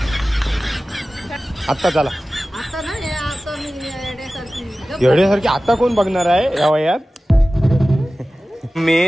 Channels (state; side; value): normal; both; correlation 0.96